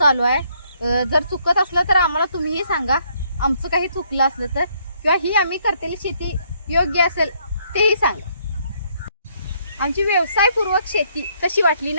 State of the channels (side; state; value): both; inverted; correlation -0.69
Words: आहे. जर चुकत असलं तर आम्हाला तुम्हीही सांगा, आमचं काही चुकलं असलं तर, किंवा ही आम्ही करतेली शेती योग्य असेल तेही सांगा. आमची व्यवसायपूर्वक शेती कशी वाटली